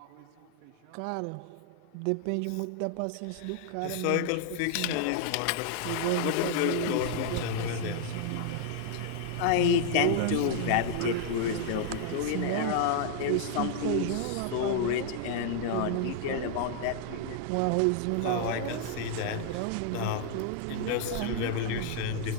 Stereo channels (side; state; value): both; different; correlation 0.00